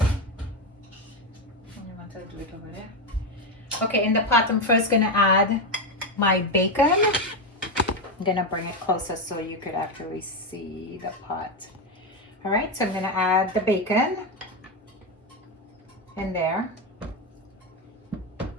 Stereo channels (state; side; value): normal; both; correlation 0.10